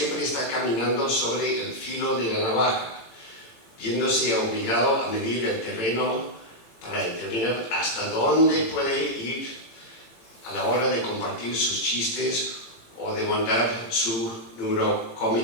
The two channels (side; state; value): right; late; 18 ms